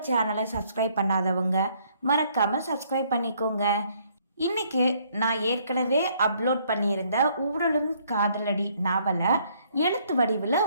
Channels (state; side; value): inverted; both; correlation -0.66